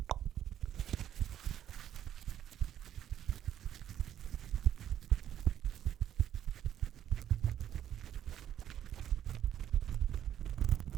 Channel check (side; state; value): left; quieter; 10.6 dB